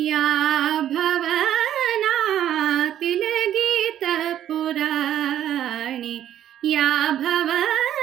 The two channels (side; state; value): left; quieter; 11.1 dB